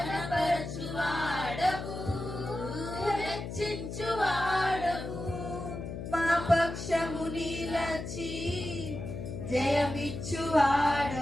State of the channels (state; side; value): noise; left; hum, 7 dB below the sound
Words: హెచ్చించువాడవు, మా పక్షము నిలచి